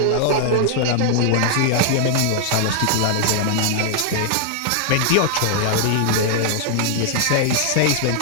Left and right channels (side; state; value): both; different; correlation -0.01